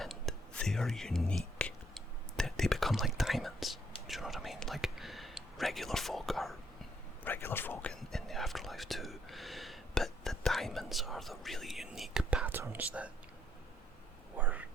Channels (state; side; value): normal; both; correlation 0.70